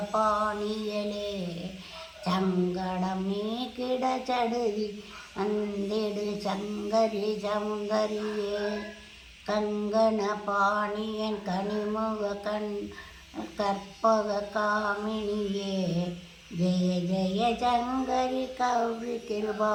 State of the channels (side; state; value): both; identical; correlation 1.00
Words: பாணியலே, சங்கடம் நீக்கிட சடுதி வந்திடு சங்கரி சௌந்தரியே, கங்கண பாணியன் கனிமுக கற்பக காமினியே, ஜெய ஜெய சங்கரி கௌரி கிருபா